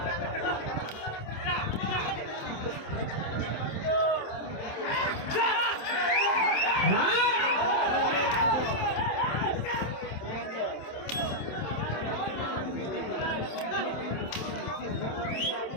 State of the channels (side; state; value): right; late; 27 ms